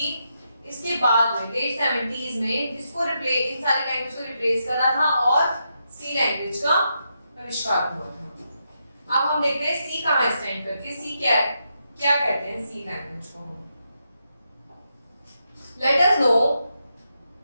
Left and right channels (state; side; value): inverted; both; correlation -0.83